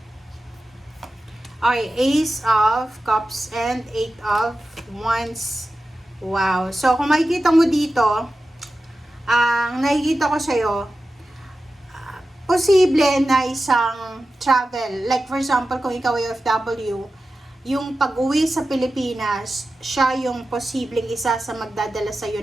Okay, Ace of Cups and 8 of Wands. Wow. So, kung makikita mo dito, ang nakikita ko sa'yo, posible na isang travel. Like for example, kung ikaw ay OFW, yung pag-uwi sa Pilipinas, siya yung posibleng isa sa magdadala sa iyo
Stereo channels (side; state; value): both; normal; correlation 0.93